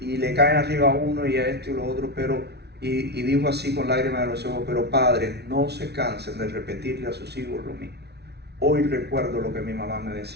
le caen arriba a uno y a esto y lo otro, pero... Y dijo así con lágrimas en los ojos, pero padres, no se cansen de repetirle a sus hijos lo mismo. Hoy recuerdo lo que mi mamá me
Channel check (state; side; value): late; left; 0.49 ms